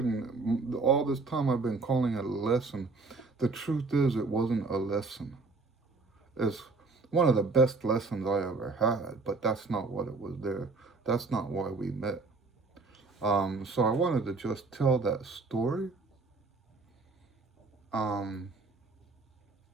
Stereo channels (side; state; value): left; quieter; 3.9 dB